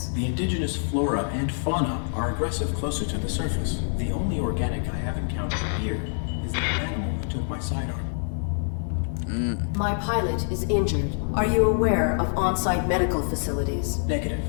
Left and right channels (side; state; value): right; silent; digital silence